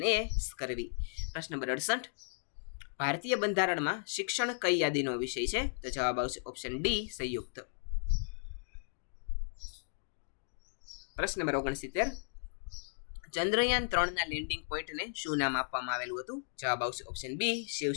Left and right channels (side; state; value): right; silent; digital silence